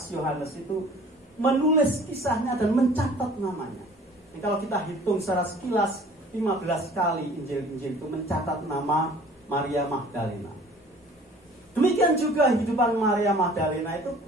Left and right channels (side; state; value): both; normal; correlation 0.50